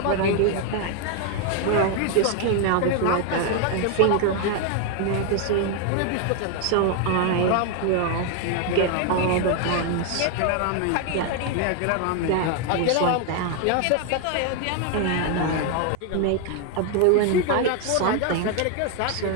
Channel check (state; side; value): different; both; correlation 0.01